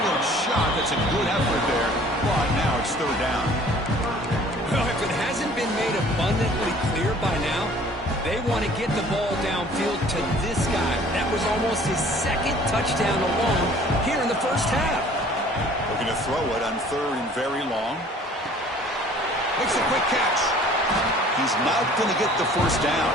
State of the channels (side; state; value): both; normal; correlation 0.52